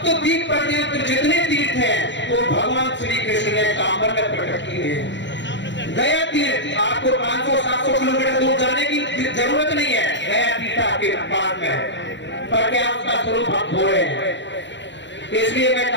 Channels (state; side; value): late; right; 0.53 ms